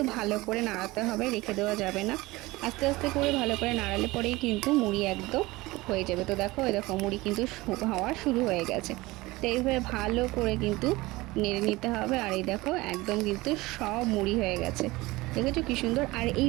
ভালো করে নাড়াতে হবে, রেখে দেওয়া যাবে না। আস্তে আস্তে করে ভালো করে নাড়ালে পরেই কিন্তু মুড়ি একদম হয়ে যাবে। তো দেখো, এই দেখো মুড়ি কিন্তু হওয়া শুরু হয়ে গেছে। তো এইভাবে ভালো করে কিন্তু নেড়ে নিতে হবে। আর এই দেখো, একদম কিন্তু সব মুড়ি হয়ে গেছে। দেখেছো কি সুন্দর। আর এই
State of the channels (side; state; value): left; quieter; 20.5 dB